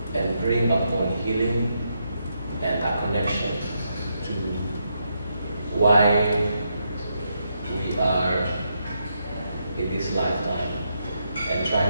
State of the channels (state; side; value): inverted; both; correlation -0.80